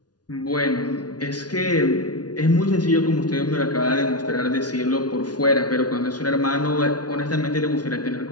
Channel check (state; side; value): late; right; 0.69 ms